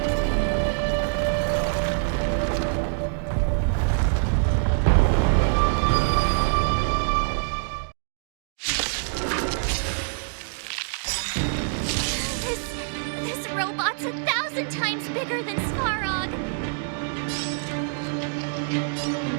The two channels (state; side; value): silent; left; digital silence